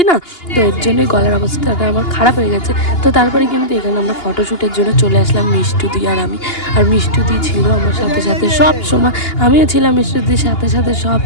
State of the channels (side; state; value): right; late; 2.8 ms